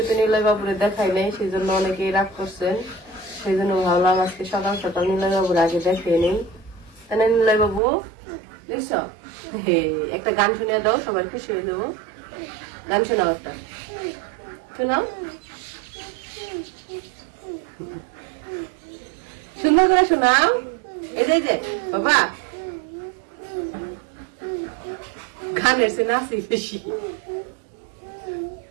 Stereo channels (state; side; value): drops out; left; at 7.8 s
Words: নিলয় বাবুরে দেখাই নাই, সেই জন্য অনেকেই রাগ করছেন। সেই জন্য ভাবলাম আজকে সকাল সকাল নিলয় বাবুর আগে দেখিয়ে নেই, তাই না? নিলয় বাবু দেখছ, একটা গান শুনিয়ে দাও, সবাই খুশি হয়ে যাবো। গান শোনাও, একটা শোনাও, সুন্দর করে শোনাও। এই যে বাবা গানের সে নাচি বেশি,